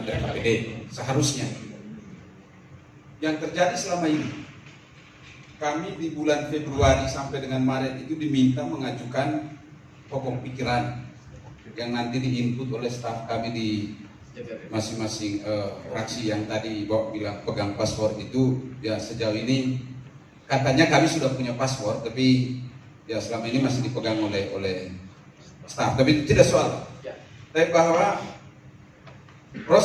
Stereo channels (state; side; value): identical; both; correlation 1.00